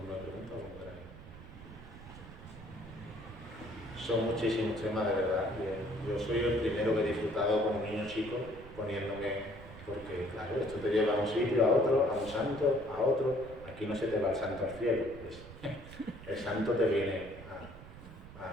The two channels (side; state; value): right; noise; rumble, 16 dB below the sound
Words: de preguntas como queráis. Son muchísimos temas, de verdad. Yo soy el primero que he disfrutado con un niño chico poniéndome, porque claro, esto te lleva a un sitio, a otro, a un santo, a otro. Aquí no se te va el santo al cielo. El santo te viene